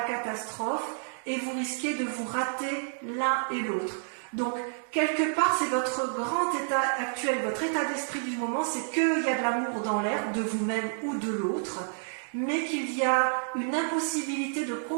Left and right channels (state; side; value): silent; left; digital silence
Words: catastrophe et vous risquez de vous rater l'un et l'autre. Donc, quelque part, c'est votre grand état actuel, votre état d'esprit du moment, c'est qu'il y a de l'amour dans l'air, de vous-même ou de l'autre, mais qu'il y a une impossibilité de